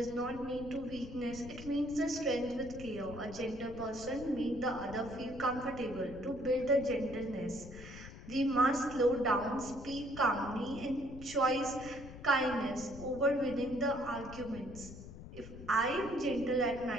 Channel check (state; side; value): noise; left; rumble, 14 dB below the sound